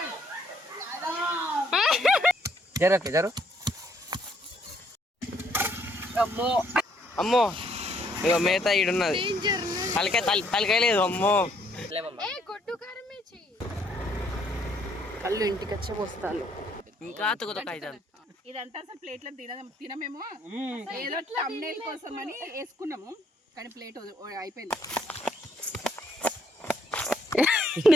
జరు అమ్మో అమ్మో ఇగో మేత ఈడున్నది. తలకాయ లేదు. అమ్మో కళ్ళు ఇంటికి వచ్చే వస్తాను. ఇంకా తుకుతాయి. ఇదంతా అసలు ప్లేట్లో తినమేమో, ఏదో thumbnail కోసం అని వేసుకున్నాము, కానీ ప్లేట్ అయిపోయింది.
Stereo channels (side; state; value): both; normal; correlation 0.68